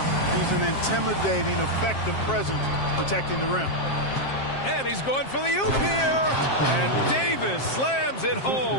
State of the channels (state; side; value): late; right; 7.5 ms